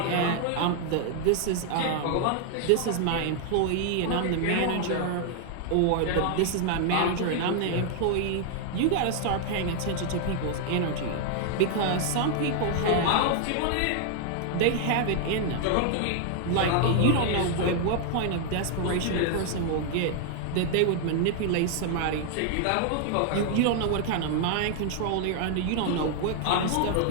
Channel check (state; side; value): different; both; correlation 0.00